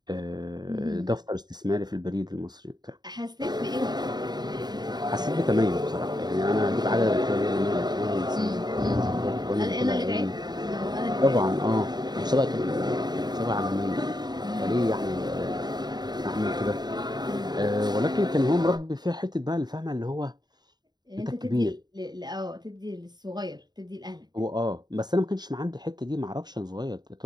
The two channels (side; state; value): left; late; 0.20 ms